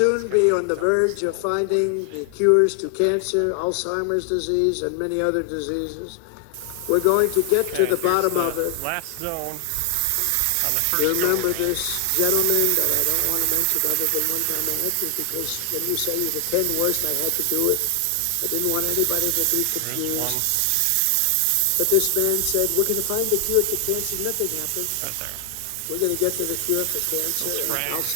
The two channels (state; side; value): different; both; correlation 0.00